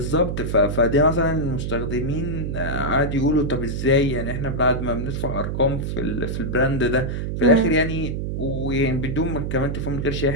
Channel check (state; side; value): noise; right; hum, 3 dB below the sound